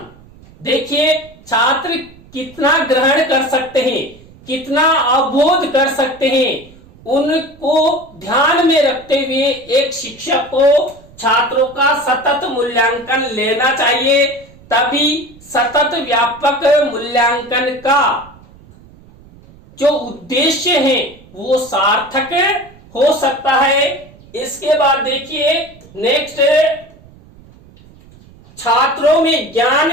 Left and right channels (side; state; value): right; noise; rumble, 24 dB below the sound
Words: देखिए छात्र कितना ग्रहण कर सकते हैं, कितना अवबोध कर सकते हैं, उनको ध्यान में रखते हुए एक शिक्षक को छात्रों का सतत मूल्यांकन लेना चाहिए। तभी सतत व्यापक मूल्यांकन का जो उद्देश्य है वो सार्थक हो सकता है। इसके बाद देखिए नेक्स्ट, छात्रों में ज्ञान